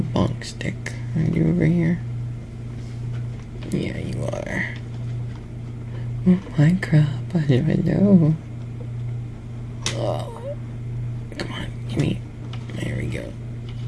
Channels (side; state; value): both; identical; correlation 1.00